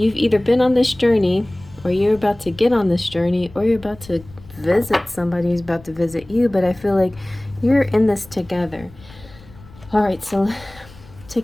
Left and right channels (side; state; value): left; noise; rumble, 22 dB below the sound